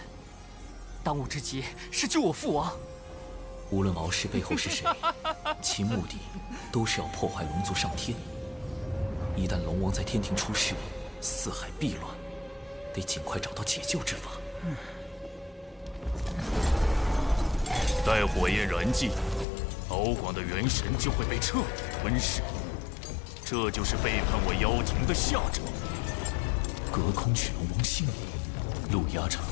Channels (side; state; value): right; drops out; at 19.5 s